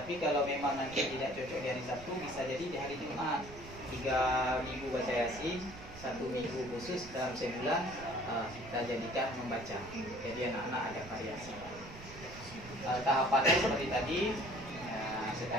kalau memang nanti tidak cocok di hari Sabtu, bisa jadi di hari Jumat. 3 minggu baca Yasin, 1 minggu khusus dalam sebulan kita jadikan membaca. Jadi anak-anak ada variasi. Tahapannya seperti tadi,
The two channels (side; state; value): right; noise; rumble, 15 dB below the sound